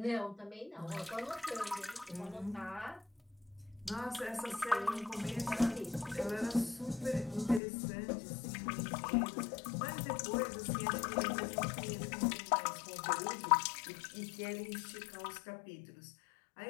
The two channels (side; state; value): right; drops out; at 7.6 s